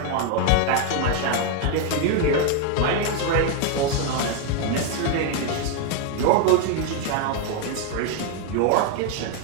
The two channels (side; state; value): both; different; correlation 0.01